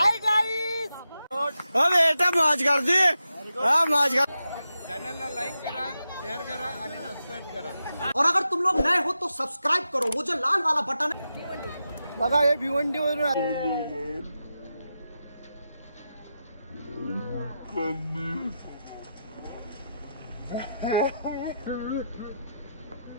गाईस. बेटा मौज कर दी. मौज कर. चॅनलला लाईक करा, शेअर करा आणि सबस्क्राईब करा. और अगर तुम लोग नए हो तो सब्सक्राइब करो, वो जो लाल वाला बटन है. बघा हे भिवंडी वरून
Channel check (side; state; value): both; inverted; correlation -0.88